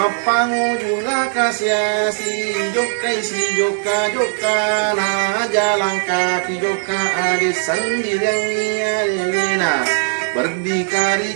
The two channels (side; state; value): left; silent; digital silence